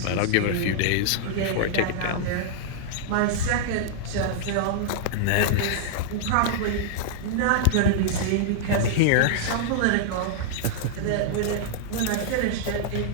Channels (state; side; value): different; both; correlation -0.01